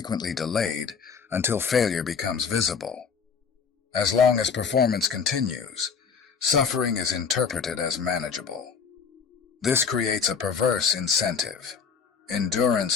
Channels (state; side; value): quieter; right; 6.1 dB